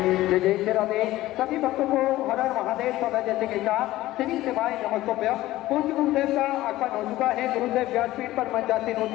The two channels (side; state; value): right; quieter; 16.3 dB